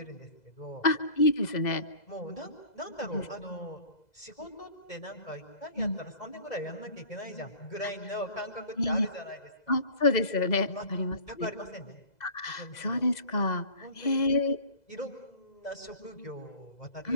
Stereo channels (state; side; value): late; right; 2.0 ms